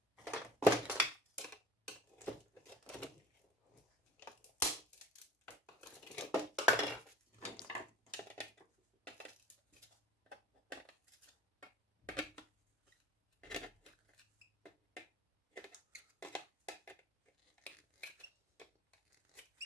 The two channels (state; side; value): normal; both; correlation 0.44